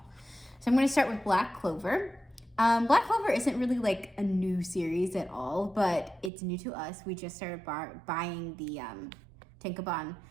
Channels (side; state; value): left; drops out; at 6.3 s